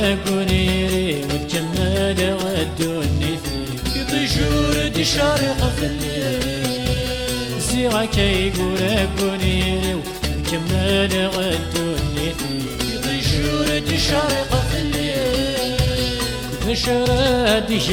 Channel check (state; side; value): identical; both; correlation 1.00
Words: قونيري وتجمل غدوني في طيشور دي شارق في الليل سيغا كي قورا قونيري وتجمل غدوني في طيشور دي شارق في الليل نشرة دي